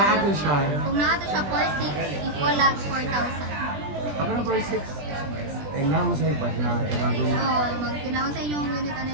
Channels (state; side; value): late; left; 20 ms